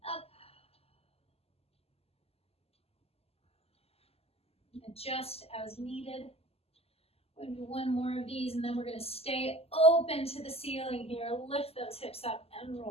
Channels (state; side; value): late; right; 0.29 ms